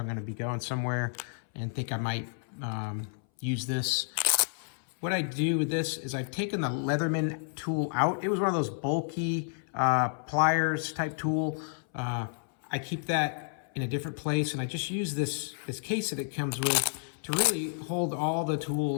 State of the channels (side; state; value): right; silent; 57 dB below the other